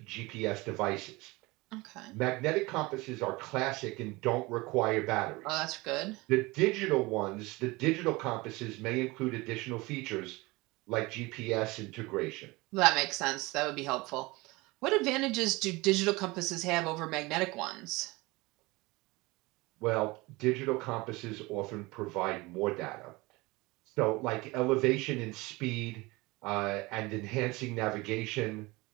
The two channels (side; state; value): left; quieter; 22.8 dB